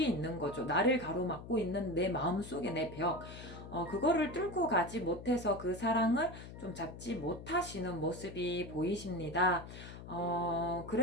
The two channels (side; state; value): left; noise; hum, 13 dB below the sound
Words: 있는 거죠. 나를 가로막고 있는 내 마음 속의 내 벽. 그거를 뚫고 가지 못해서 그 사랑을 좀 잡지 못하시는 모습이 보이십니다.